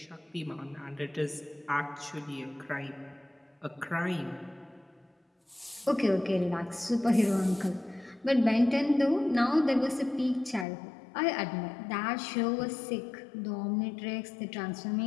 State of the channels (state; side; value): drops out; right; at 10.7 s